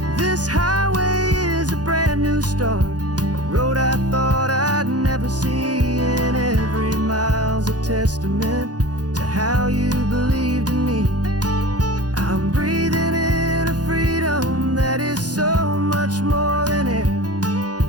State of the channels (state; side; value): late; left; 0.69 ms